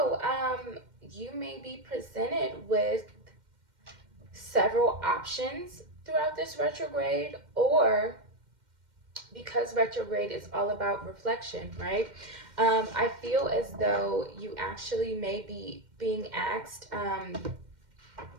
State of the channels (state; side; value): late; left; 2.1 ms